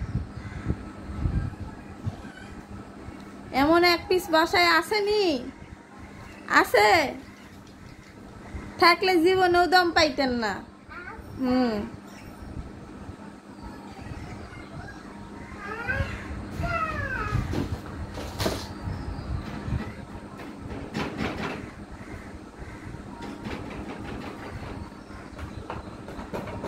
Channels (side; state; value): both; identical; correlation 1.00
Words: এমন এক পিস বাসায় আসেনি? আছে থাকলে জীবনেও দম পাইতেন না।